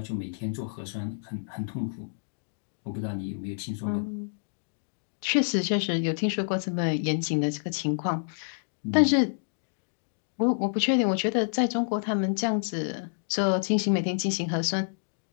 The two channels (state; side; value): silent; right; digital silence